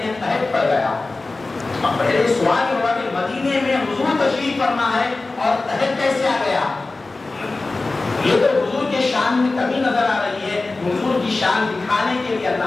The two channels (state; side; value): quieter; right; 3.4 dB